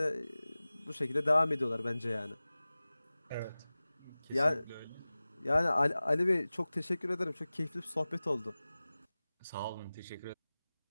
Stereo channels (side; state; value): both; inverted; correlation -0.98